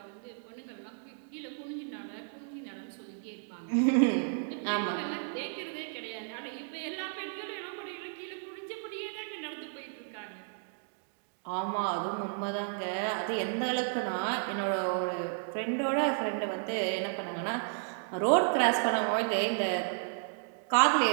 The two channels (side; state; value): left; silent; digital silence